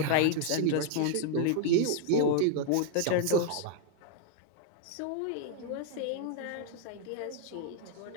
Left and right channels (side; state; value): both; different; correlation 0.00